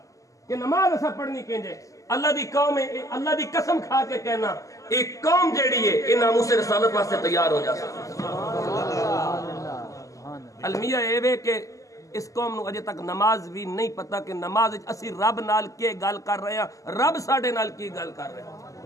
کہ نماز ایسا پڑھنی کینجے اللہ دی قوم ہے اللہ دی قسم کھا کے کہنا ایک قوم جیڑی ہے یہ ناموس رسالت واسطے تیار ہو جا المیہ ایوے کہ اس قوم نو اجے تک نماز بھی نہیں پتا کہ نماز اسی رب نال کے گل کر رہے ہیں رب ساڈے نال کی گل کر رہے ہیں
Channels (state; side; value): late; right; 0.16 ms